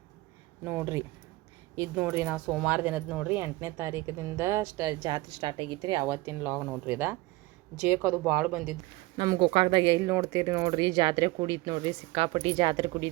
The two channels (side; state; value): left; quieter; 20.6 dB